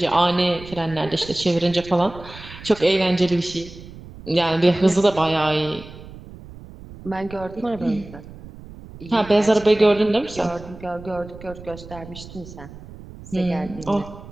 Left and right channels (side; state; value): right; noise; rumble, 16 dB below the sound